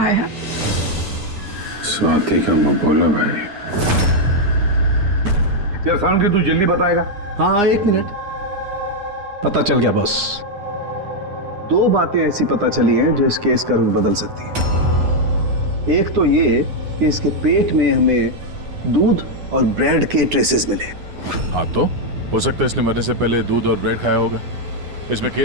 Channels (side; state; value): left; late; 9.8 ms